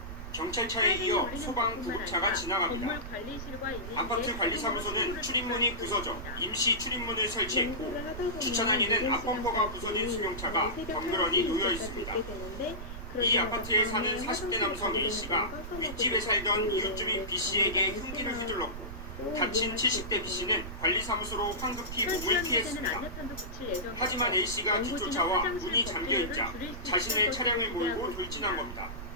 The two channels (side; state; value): right; noise; rumble, 9 dB below the sound